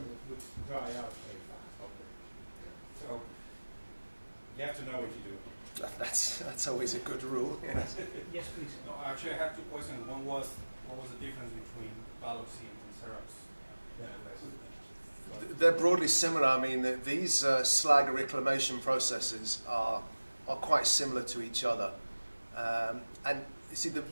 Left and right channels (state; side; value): inverted; both; correlation -1.00